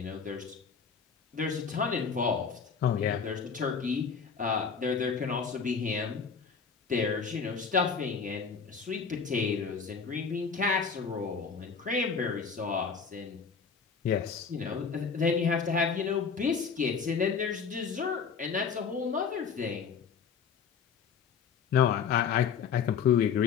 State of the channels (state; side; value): quieter; right; 6.1 dB